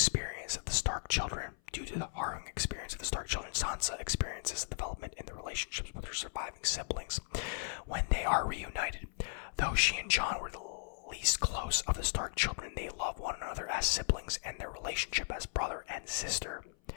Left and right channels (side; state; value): right; silent; 53 dB below the other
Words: of the Stark children, Sansa experiences a development in the relationships with her surviving siblings when they are reunited. Though she and Jon were the least close of the Stark children, they love one another as siblings, and their relationship as brother and sister